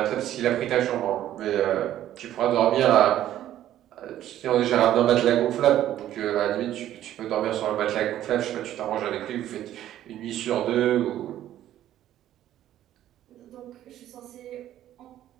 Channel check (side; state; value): left; quieter; 12.4 dB